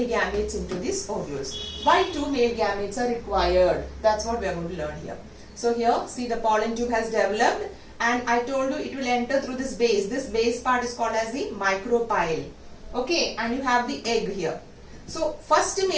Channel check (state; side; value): identical; both; correlation 1.00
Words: gametes into these ovules. Why 2 male gametes are required? That's what we are going to learn here. So here, see, the pollen tube has developed, and I told you it will enter through this base. This base part is called as the micropyle. Okay, and you have the egg here. So first